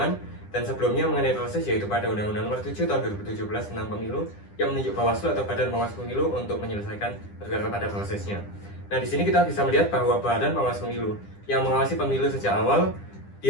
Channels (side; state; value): right; late; 9.9 ms